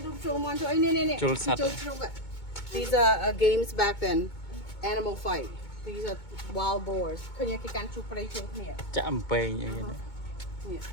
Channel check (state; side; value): late; right; 2.2 ms